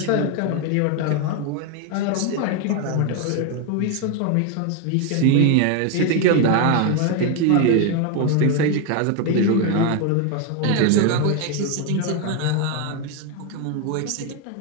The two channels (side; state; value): both; different; correlation 0.01